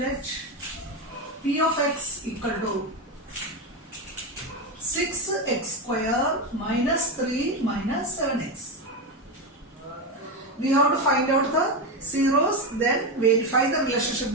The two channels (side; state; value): both; normal; correlation 0.13